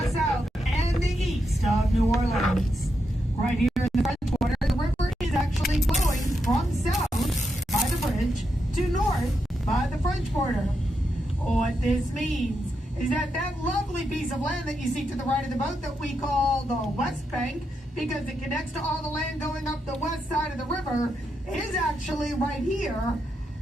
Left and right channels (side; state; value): both; normal; correlation 0.84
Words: south, and the east of New Orleans. Right here in the French Quarter, the river is actually flowing from south by the bridge to north by the French Quarter. What this means is that that lovely piece of land that you see to the right of the boat that we call the West Bank, because it connects to all the land going up the west side of the river, is actually right here